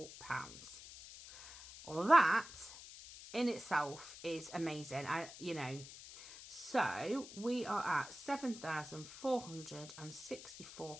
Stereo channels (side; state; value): left; noise; hiss, 14 dB below the sound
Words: Well, that in itself is amazing. So we are at